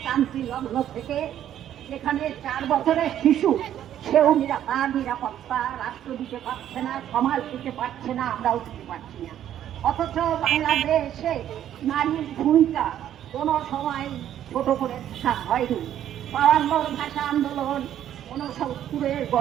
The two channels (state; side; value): quieter; left; 11.0 dB